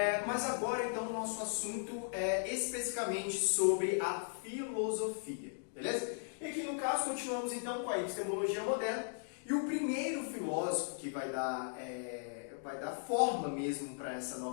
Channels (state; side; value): silent; right; digital silence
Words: Mas agora então o nosso assunto é especificamente sobre a filosofia, beleza? E aqui no caso continuamos então com a epistemologia moderna, e o primeiro filósofo que vai dar forma mesmo para essa